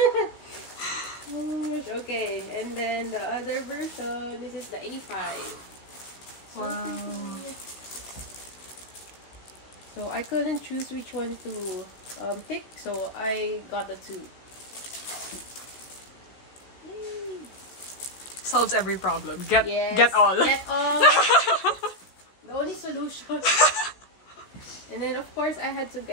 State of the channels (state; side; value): late; right; 16 ms